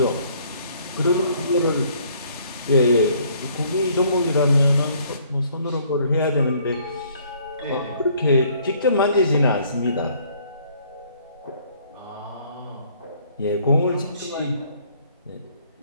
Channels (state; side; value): inverted; both; correlation -0.62